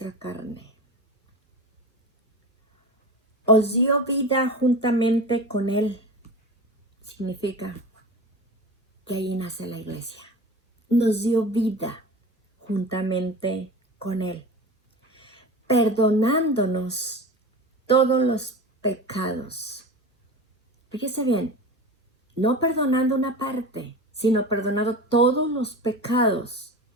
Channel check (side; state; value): both; normal; correlation 0.31